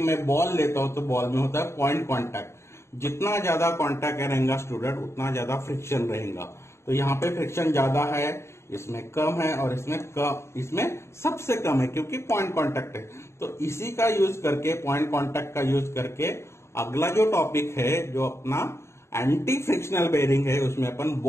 बॉल लेता हूं तो बॉल में होता है पॉइंट कॉन्टैक्ट। जितना ज्यादा कॉन्टैक्ट रहेगा स्टूडेंट, उतना ज्यादा फ्रिक्शन रहेगा। तो यहाँ पे फ्रिक्शन ज्यादा है, इसमें कम है, और इसमें सबसे कम है क्योंकि पॉइंट कांटेक्ट है। तो इसी का यूज करके, पॉइंट कांटेक्ट का यूज करके अगला जो टॉपिक है जो अपना एंटी फ्रिक्शनल बेरिंग है, उसमें अपन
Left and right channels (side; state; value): right; late; 0.13 ms